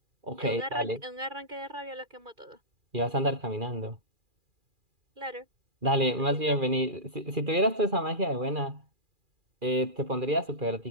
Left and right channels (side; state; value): left; late; 2.4 ms